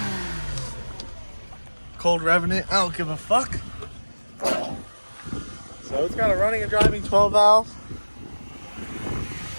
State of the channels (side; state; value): both; inverted; correlation -1.00